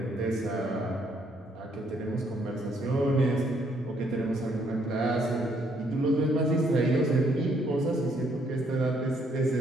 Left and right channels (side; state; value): both; normal; correlation 0.70